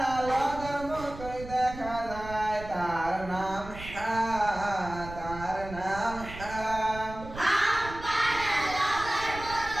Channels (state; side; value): noise; right; rumble, 13 dB below the sound